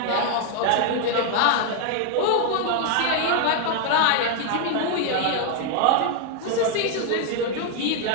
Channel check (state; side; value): different; both; correlation 0.00